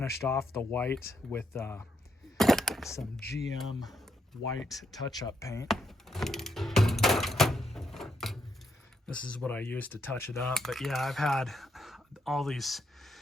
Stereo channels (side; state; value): both; normal; correlation 0.77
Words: off the white with some GM white touch-up paint. This is what I used to touch it up. But yeah, I've had all this